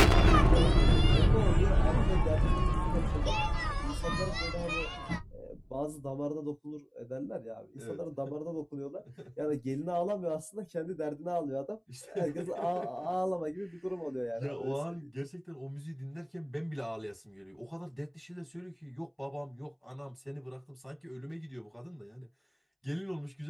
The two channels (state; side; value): identical; both; correlation 1.00